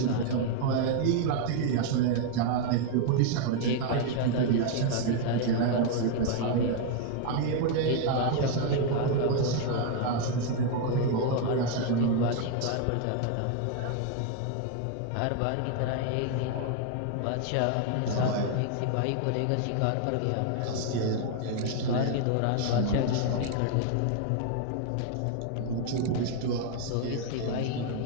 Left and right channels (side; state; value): both; different; correlation 0.00